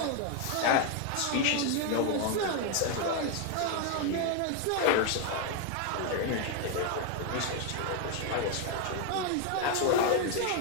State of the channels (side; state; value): both; different; correlation 0.01